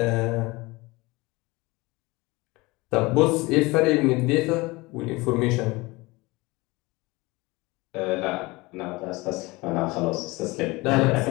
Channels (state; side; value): quieter; right; 22.9 dB